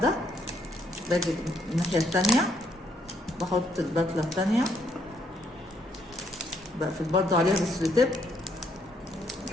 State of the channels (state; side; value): normal; both; correlation 0.71